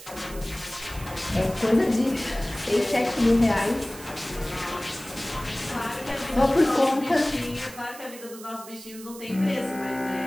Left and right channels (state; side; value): noise; right; hiss, 16 dB below the sound